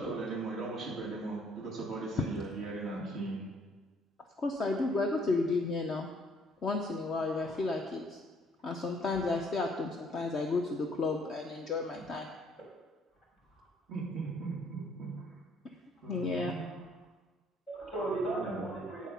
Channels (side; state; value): both; normal; correlation 0.63